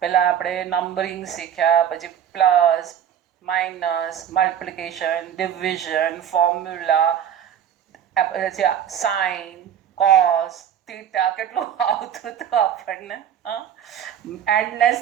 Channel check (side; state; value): left; quieter; 9.3 dB